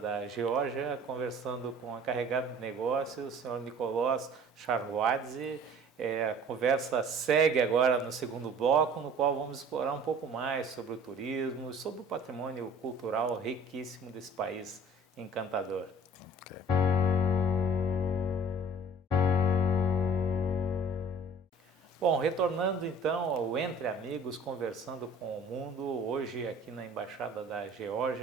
Geórgia, conversando com a encarregada de negócios, o senhor Nicolás Charhuadze. A conversa segue agora no segundo bloco, no qual vamos explorar um pouco mais sobre o turismo, sobre o patrimônio cultural riquíssimo desse país encantador. Okay. Bom, retornando então ao Entre Amigos, conversando com o mundo, hoje aqui na Embaixada da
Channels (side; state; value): both; normal; correlation 0.49